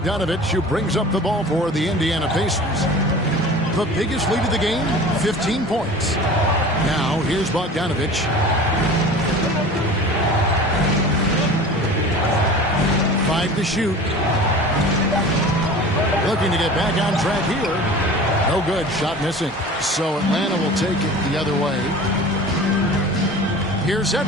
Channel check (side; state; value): both; normal; correlation 0.39